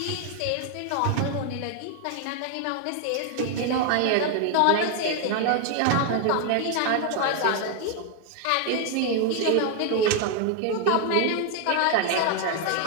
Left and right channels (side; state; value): both; different; correlation 0.00